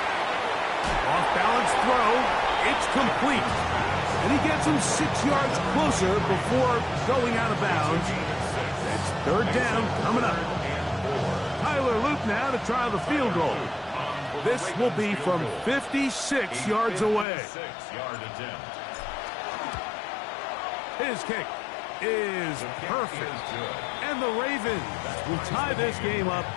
Off-balance throw. It's complete. And he gets him 6 yards closer before going out of bounds. It's 3rd down coming up. Tyler Luke now to try the field goal. This will be from 56 yards away. 6-yard attempt. His kick is perfect. And the Ravens will tie this game up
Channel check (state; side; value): drops out; right; at 17.2 s